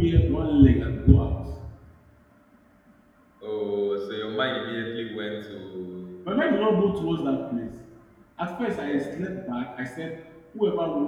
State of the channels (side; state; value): both; identical; correlation 1.00